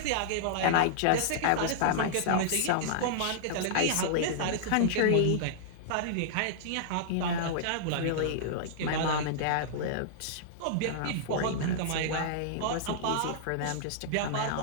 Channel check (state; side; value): different; both; correlation -0.01